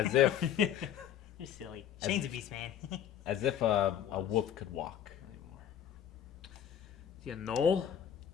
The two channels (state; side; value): quieter; right; 9.6 dB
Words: if You're silly. Shane's a beast man. as if a wolf could walk. Is he a knoll?